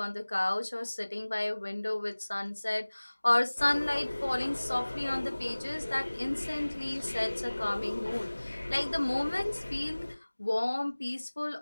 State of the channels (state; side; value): inverted; both; correlation -1.00